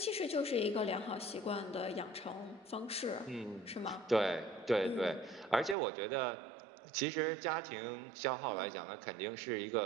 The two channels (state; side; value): drops out; left; at 5.8 s